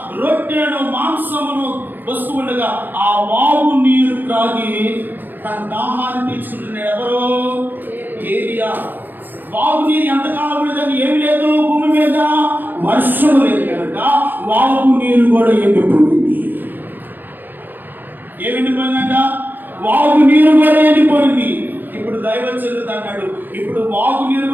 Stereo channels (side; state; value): left; late; 0.089 ms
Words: రొట్టెను మాంసమును వస్తూ ఉండగా ఆ వాగు నీరు త్రాగి తన దాహాన్ని తీర్చుకుంటున్నాడు. ఎవరు? ఏలియా. వాగు నీరు ఎంతకాలం ఉండదని ఏమి లేదు భూమి మీద, వర్షం లేదు కనుక వాగు నీరు కూడా ఎండిపోయింది. ఏమి ఎండిపోయిందంట? వాగు నీరు కూడా ఎండిపోయింది. ఇప్పుడు దైవజనుడు అన్నాడు, ఇప్పుడు వాగు నీరు